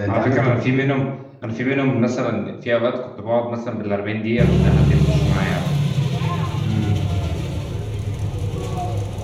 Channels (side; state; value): both; identical; correlation 1.00